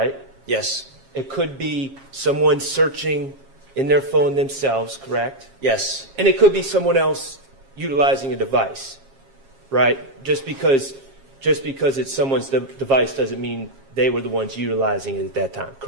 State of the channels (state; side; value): late; left; 7.4 ms